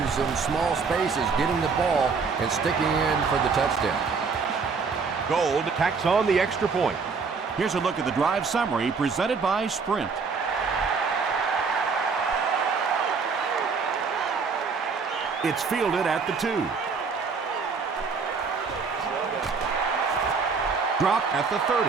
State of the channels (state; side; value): quieter; left; 5.1 dB